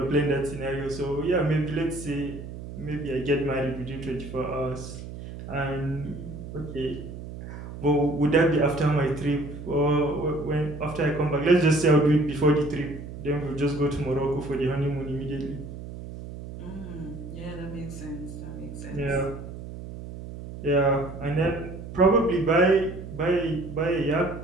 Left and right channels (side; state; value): right; noise; hum, 11 dB below the sound